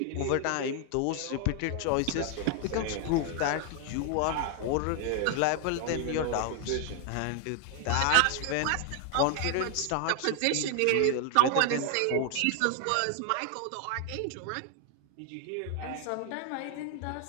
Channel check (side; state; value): both; different; correlation 0.00